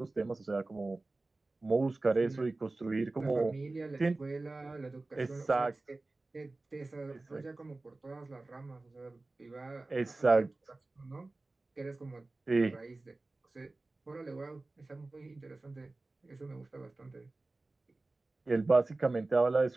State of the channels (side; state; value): left; quieter; 3.1 dB